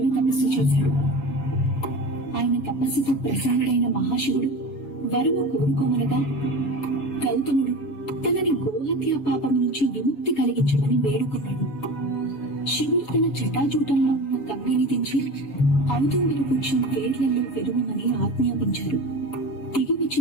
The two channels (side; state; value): right; late; 7.0 ms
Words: తపస్సు చేశాడు. ఆయన తపస్సుతో ప్రసన్నుడైన మహాశివుడు వరము కోరుకోమనగా గౌతముడు తనని గోహత్య పాపం నుంచి విముక్తి కలిగించమని వేడుకున్నాడు. శివుడు తన జటాజూటంలో ఉన్న గంగని దించి ఔదుంబర వృక్షం వేర్లలో వెలువమని ఆజ్ఞాపించారు. దిగి